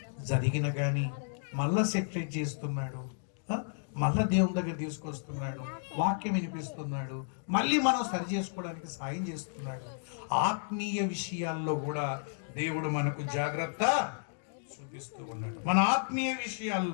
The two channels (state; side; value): silent; right; digital silence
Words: జరిగిన కానీ మళ్ళా సెటిల్ చేస్తున్నాడు, మళ్ళా దేవుని దగ్గర తీసుకొస్తున్నాడు, వాక్యం వినిపిస్తున్నాడు, మళ్ళీ మనం సరి చేసుకోవడానికి సాయం చేస్తున్నాడు. ఆత్మీయ విషయాల్లో కూడా దేవుడు మనకు జాగ్రత్త చూపిస్తూ ఉన్నాడు. మన ఆత్మీయ